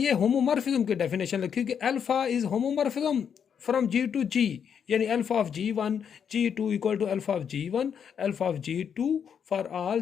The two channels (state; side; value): quieter; right; 7.6 dB